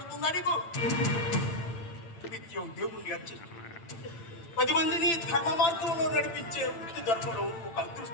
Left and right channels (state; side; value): late; right; 8.9 ms